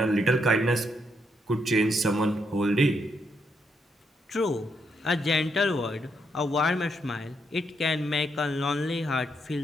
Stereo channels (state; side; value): normal; both; correlation 0.78